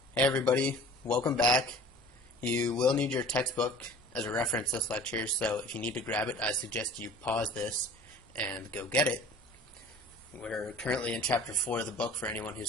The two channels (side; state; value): both; normal; correlation 0.45